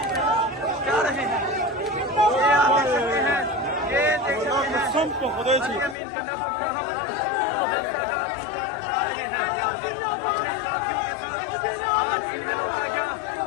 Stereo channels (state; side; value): drops out; right; at 6.0 s